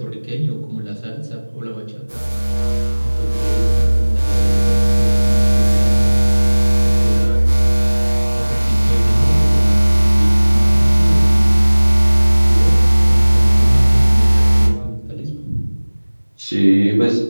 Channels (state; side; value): inverted; both; correlation -1.00